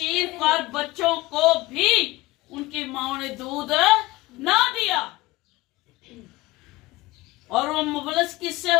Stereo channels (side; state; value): right; quieter; 19.8 dB